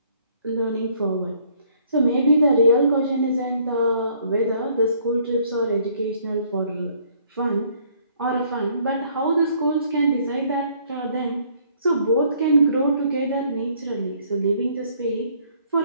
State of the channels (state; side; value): inverted; both; correlation -0.63